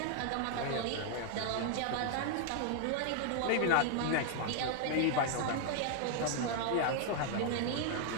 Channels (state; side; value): different; both; correlation 0.00